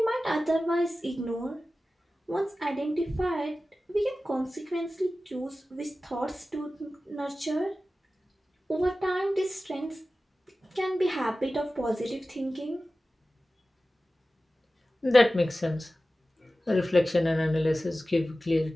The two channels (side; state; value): both; normal; correlation 0.95